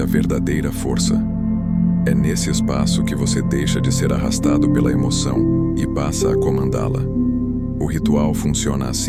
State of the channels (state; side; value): identical; both; correlation 1.00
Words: a verdadeira força. É nesse espaço que você deixa de ser arrastado pela emoção e passa a comandá-la. O ritual funciona